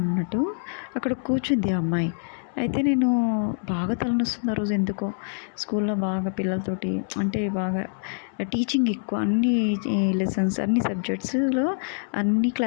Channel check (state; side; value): silent; right; digital silence